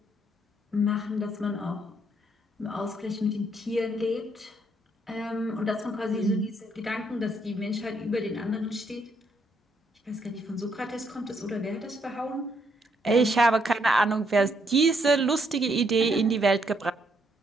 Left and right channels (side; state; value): both; normal; correlation 0.73